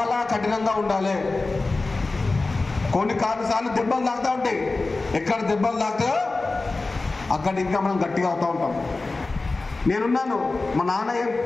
కఠినంగా ఉండాలి. కొన్నిసార్లు దెబ్బలు తాగుతూ ఉంటాయి. ఎక్కడ దెబ్బలు తాగుతాయో అక్కడ ఇంకా మనం గట్టిగా అవుతూ ఉంటాం. నేనున్నాను, మా నాన్న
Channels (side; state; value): right; quieter; 3.5 dB